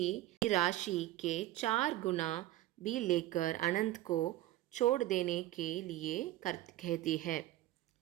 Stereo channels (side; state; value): left; quieter; 15.2 dB